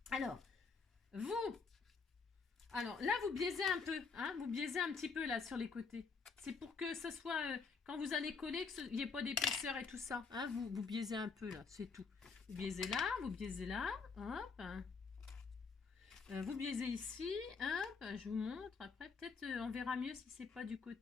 Alors là, vous biaisez un peu. Hein, vous biaisez un petit peu là sur les côtés. C'est pour que ce soit, quand vous allez coller, qu'il n'y ait pas d'épaisseur et tout ça. Hein, vous biaisez un peu là, c'est tout. Vous biaisez là. Hop. Vous biaisez ici. Hop, je vous montre. Après, peut-être on verra mieux si c'est pas du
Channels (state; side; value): quieter; right; 5.0 dB